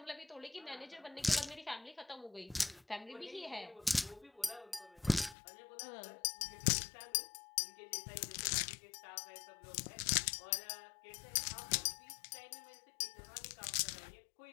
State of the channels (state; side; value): drops out; right; at 5.4 s